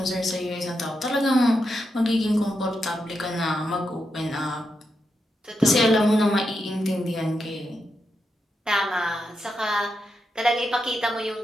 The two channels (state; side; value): normal; both; correlation 0.85